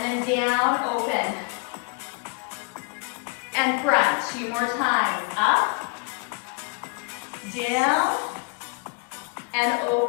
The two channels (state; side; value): quieter; right; 34.7 dB